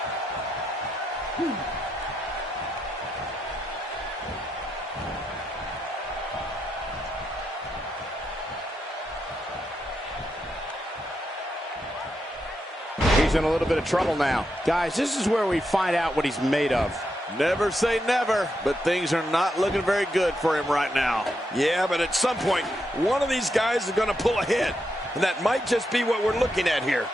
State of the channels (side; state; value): both; normal; correlation 0.83